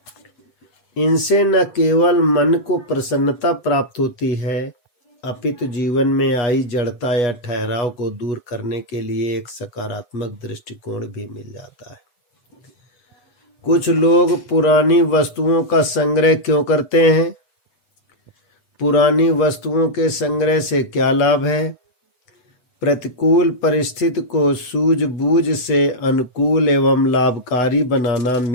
इनसे न केवल मन को प्रसन्नता प्राप्त होती है, अपितु जीवन में आई जड़ता या ठहराव को दूर करने के लिए एक सकारात्मक दृष्टिकोण भी मिल जाता है। कुछ लोग पुरानी वस्तुओं का संग्रह क्यों करते हैं? पुरानी वस्तुओं के संग्रह से क्या लाभ है? प्रतिकूल परिस्थिति को सूझबूझ से अनुकूल एवं लाभकारी बनाना,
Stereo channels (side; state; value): right; late; 8.0 ms